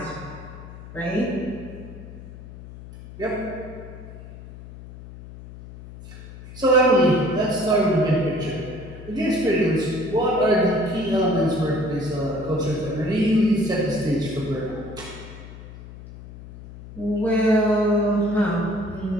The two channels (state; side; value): noise; left; hum, 15 dB below the sound